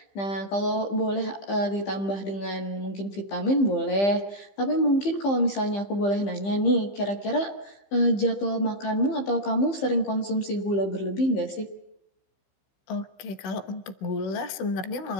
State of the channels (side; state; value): right; late; 15 ms